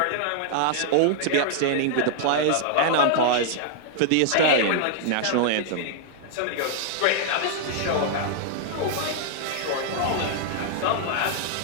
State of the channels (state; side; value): different; both; correlation -0.01